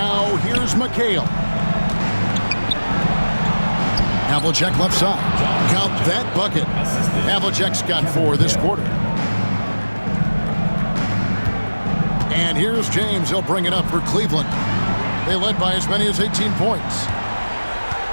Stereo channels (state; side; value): inverted; both; correlation -1.00